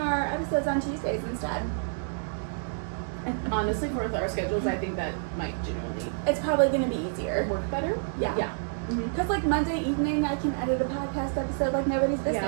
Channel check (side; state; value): left; silent; digital silence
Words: episodes on Tuesdays instead. And honestly, for our schedules, I think that might genuinely It's probably gonna be easier. work better. Yeah. Yeah. Because like Monday evening, I can edit a podcast episode like nobody's business.